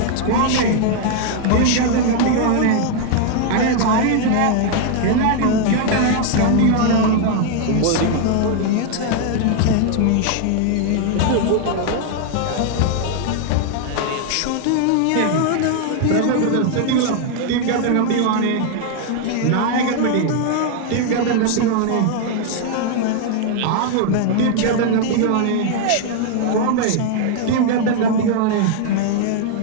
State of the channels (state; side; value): different; both; correlation 0.00